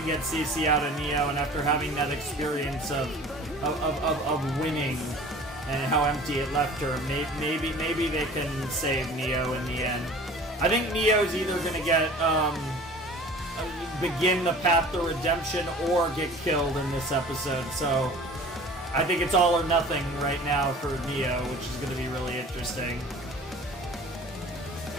get CC out of Neo, and after having that experience of winning and how empty it left her, maybe they can save Neo in the end. I think Neo's either gonna get begin the path to redemption or get killed in this episode, so I think it's all or nothing right now for Neo, which is going to be really interesting.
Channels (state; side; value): normal; both; correlation 0.44